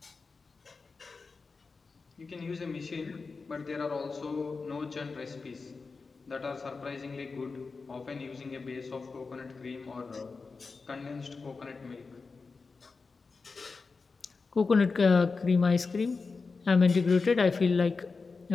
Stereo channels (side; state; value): right; quieter; 4.4 dB